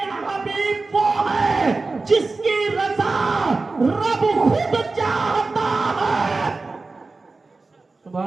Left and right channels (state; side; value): quieter; left; 3.7 dB